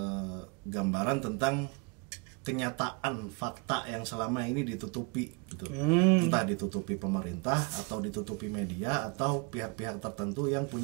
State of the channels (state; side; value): quieter; left; 31.5 dB